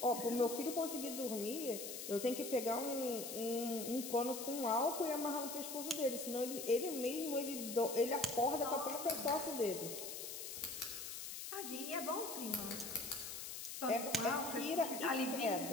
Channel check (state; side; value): noise; left; hiss, 7 dB below the sound